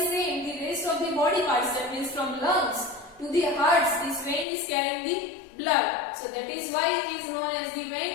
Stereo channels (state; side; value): drops out; right; at 4.5 s